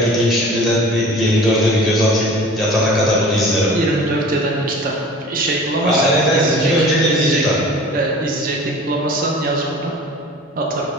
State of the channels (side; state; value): both; normal; correlation 0.42